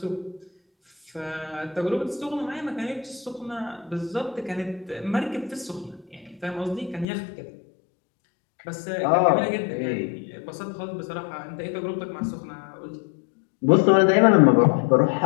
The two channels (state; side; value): drops out; right; at 7.1 s